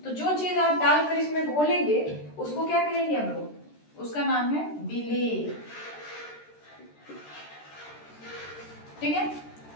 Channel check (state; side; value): late; right; 13 ms